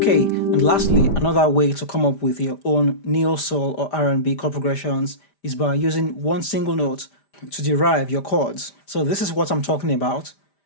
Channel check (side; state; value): right; late; 5.0 ms